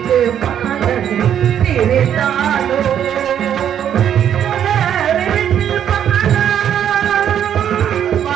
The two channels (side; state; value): left; quieter; 9.5 dB